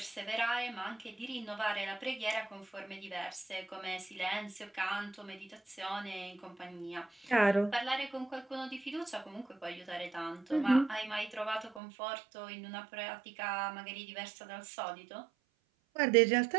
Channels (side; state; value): left; drops out; at 11.8 s